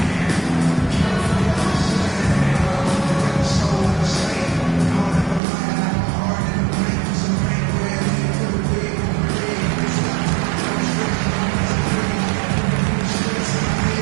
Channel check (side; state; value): left; drops out; at 5.4 s